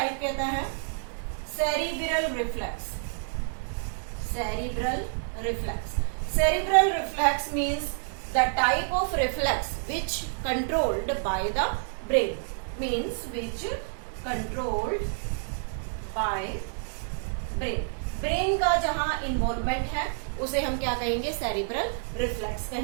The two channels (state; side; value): silent; left; 59 dB below the other